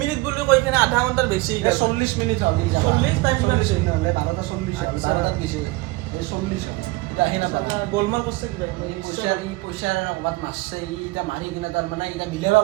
মিনিট বুলি কৈ কিনে আধা ঘণ্টাৰ বেছি 40 মিনিট হ'ল 40 টাইম কিমান হৈছে 12টা 40 12টাত গৈছে এই 40 এটা আহি নাপালা গোলমাল কৰছে কি পইচা ক'ৰবাত মাছছে ই এটা মাৰি কিনে তাৰ মানে এটা মিলাব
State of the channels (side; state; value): left; quieter; 21.5 dB